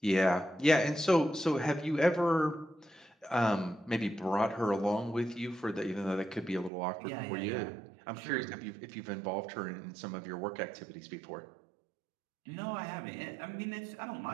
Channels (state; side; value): drops out; left; at 6.7 s